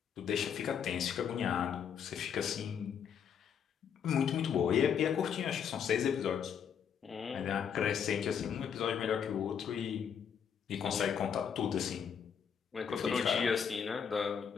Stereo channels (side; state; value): right; quieter; 7.6 dB